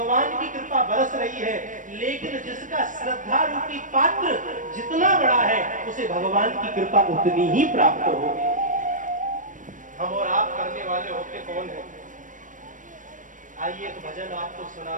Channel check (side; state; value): left; late; 0.38 ms